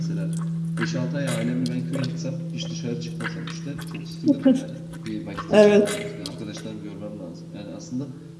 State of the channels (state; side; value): identical; both; correlation 1.00